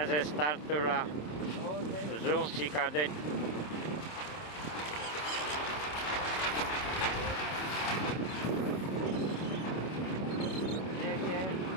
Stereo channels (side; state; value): right; late; 27 ms